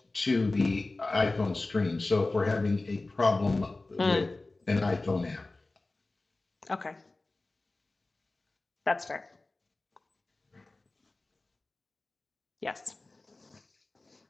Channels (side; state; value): right; quieter; 3.2 dB